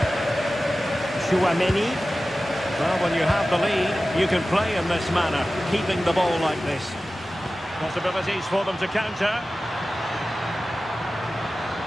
Chouameni. Well, when you have the lead, you can play in this manner, keeping the ball like this. Possibilities for them to counter.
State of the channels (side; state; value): both; normal; correlation 0.95